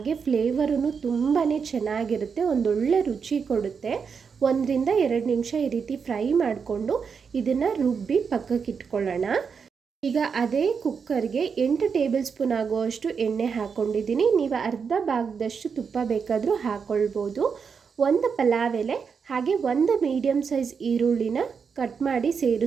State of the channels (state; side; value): quieter; left; 6.0 dB